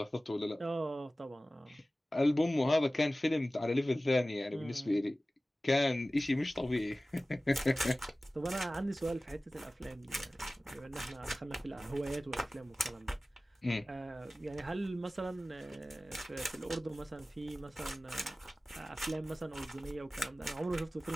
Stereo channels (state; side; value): normal; both; correlation 0.97